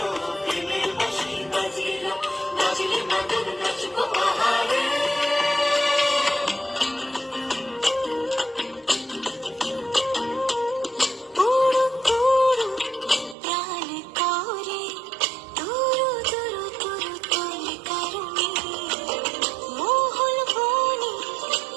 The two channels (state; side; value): drops out; left; at 13.4 s